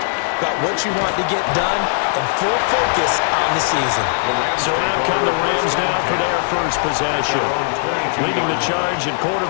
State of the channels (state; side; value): silent; right; 67 dB below the other